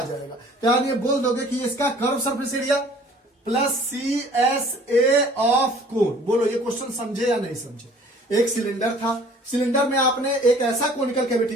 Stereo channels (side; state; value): both; normal; correlation 0.52